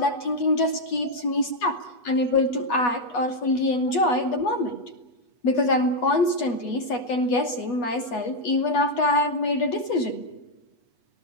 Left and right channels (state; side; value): late; right; 8.2 ms